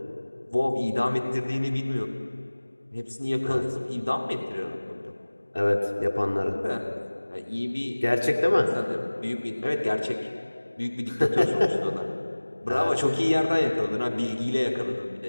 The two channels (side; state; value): both; inverted; correlation -1.00